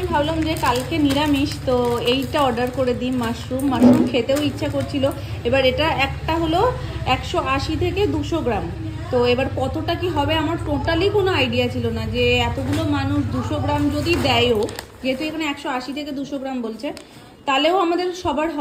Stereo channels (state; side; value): identical; both; correlation 1.00